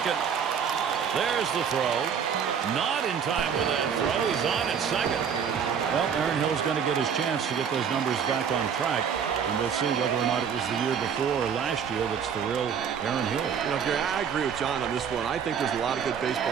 There's the throw. Not in time with that throw. He's on at second. Well, Aaron Hill's going to get his chance to get those numbers back on track. And we'll see whether or not it was the year before or last year that's the real Aaron Hill. You know, Gary, I agree with John on this one. I think there's a lot of good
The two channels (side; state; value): left; quieter; 7.3 dB